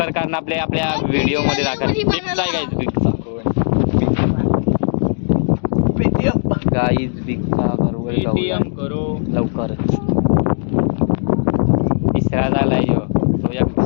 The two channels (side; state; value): right; silent; digital silence